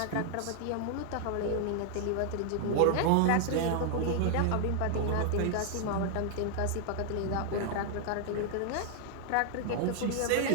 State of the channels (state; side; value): different; both; correlation 0.00